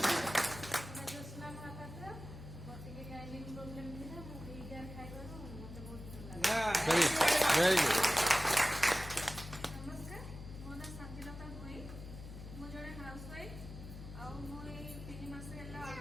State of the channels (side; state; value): left; noise; hum, 12 dB below the sound